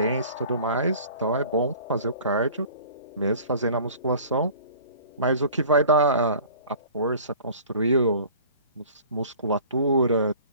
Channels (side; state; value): both; inverted; correlation -0.46